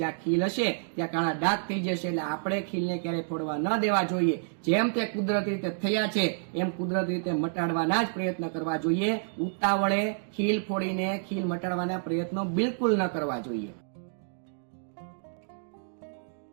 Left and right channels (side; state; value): left; silent; digital silence